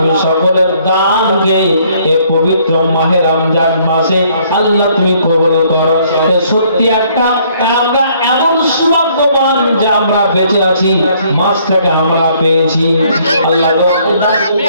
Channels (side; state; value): both; inverted; correlation -0.64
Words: সকলের দানকে এই পবিত্র মাহে রমজান মাসে আল্লাহ তুমি কবুল করো। সত্যি একটা আমরা এমন সৌভাগ্যবান যে আমরা বেঁচে আছি, মাসটাকে আমরা পেয়েছি। আল্লাহ